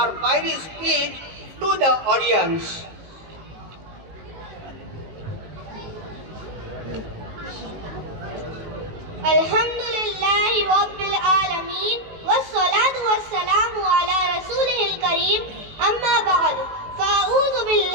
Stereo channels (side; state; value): left; late; 19 ms